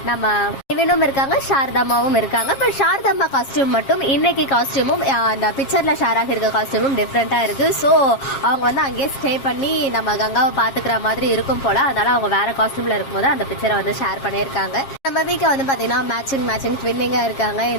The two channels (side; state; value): right; late; 7.4 ms